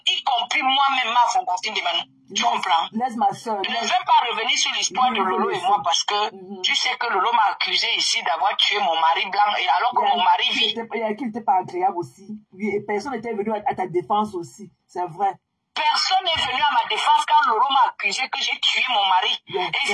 y compris moi-même, ma Fongonfine de Manou. Tu comprends? Laisse ma soeur. Je ne vais pas revenir sur l'histoire de Lolo et moi parce que tu sais que Lolo m'a accusé ici d'avoir tué mon mari blanc et alors que mon mari vit. Qui n'était pas agréable aussi. Oui, et personne n'était venu à ta défense aussi. C'est vrai. Personne n'est venu à ma défense quand Lolo m'a accusé que j'ai tué mon mari.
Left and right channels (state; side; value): identical; both; correlation 1.00